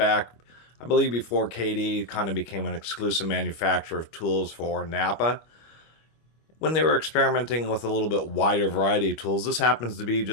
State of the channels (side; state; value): right; late; 25 ms